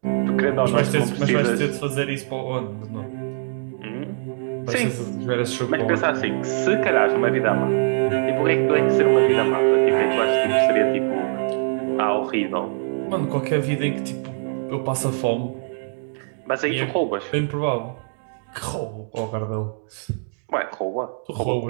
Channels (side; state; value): left; silent; digital silence